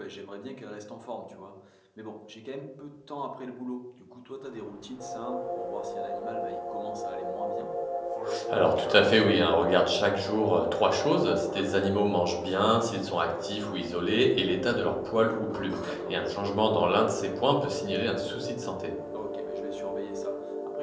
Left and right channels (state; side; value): identical; both; correlation 1.00